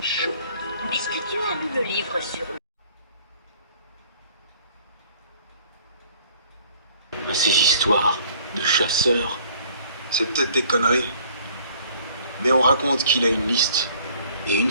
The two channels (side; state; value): both; inverted; correlation -0.57